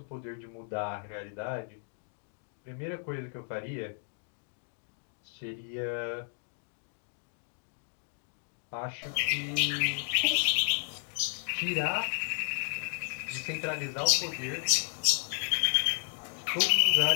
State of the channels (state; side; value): silent; right; digital silence